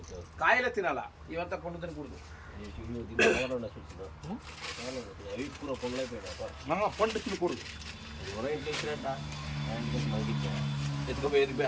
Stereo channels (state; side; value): identical; both; correlation 1.00